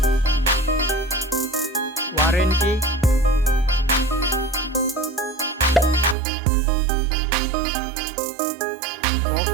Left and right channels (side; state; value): left; drops out; at 6.2 s